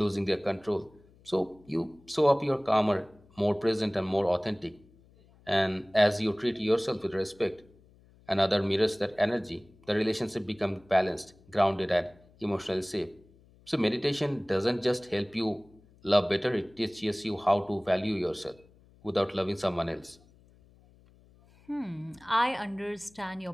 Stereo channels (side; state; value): left; noise; hum, 28 dB below the sound